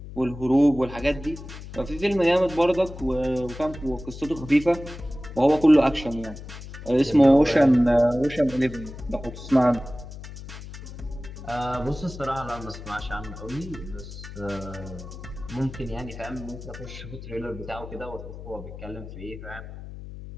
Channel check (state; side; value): noise; left; hum, 12 dB below the sound